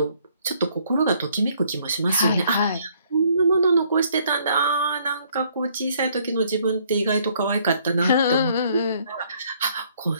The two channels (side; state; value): both; inverted; correlation -0.65